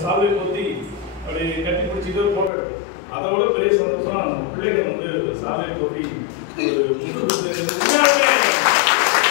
சால்வை போத்தி அப்படி கட்டி பிடிச்சிட்டு போட்டோ எடுத்தோம். அதை விட பெரிய சந்தோஷம் பிள்ளைகள் வந்து ஒரு சால்வை போத்தி ஒரு முட்டு கொடுத்து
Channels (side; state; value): right; drops out; at 2.5 s